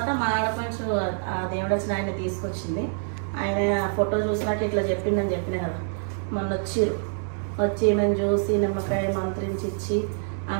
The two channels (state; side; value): silent; left; digital silence